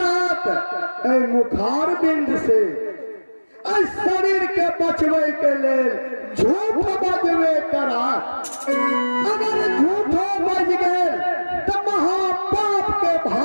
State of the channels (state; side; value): inverted; both; correlation -1.00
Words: मुखार बिंद से शरीर के बचवे के लेल झूठ बजवे करा। अगर झूठो बज गए तो महापाप के